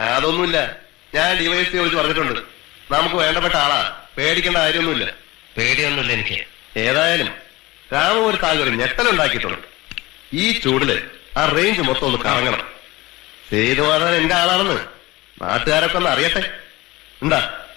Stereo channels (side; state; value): right; quieter; 20.1 dB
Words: അതൊന്നുമില്ല. ഞാൻ ഡിവൈഎസ്പി വിളിച്ച് പറഞ്ഞിട്ടുണ്ട്. നമുക്ക് വേണ്ടപ്പെട്ട ആളാ, പേടിക്കേണ്ട കാര്യമൊന്നുമില്ല. പേടിയൊന്നുമില്ല എനിക്ക്. ഏതായാലും രാമ ഒരു താങ്കൾ ഞെട്ടലുണ്ടാക്കിയിട്ടുണ്ട്. ഈ ചൂടില് ആ റേഞ്ച് മൊത്തം ഒന്ന് കറങ്ങണം. സേതുവാദൻ എന്റെ ആളാണെന്ന് നാട്ടുകാരൊക്കെ ഒന്ന് അറിയട്ടെ. എന്താ